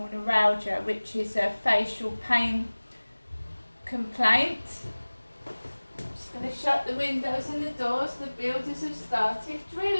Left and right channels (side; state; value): both; inverted; correlation -1.00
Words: neuralgia, which is a facial pain complaint, I'm just going to shut the windows and the doors. The builders have started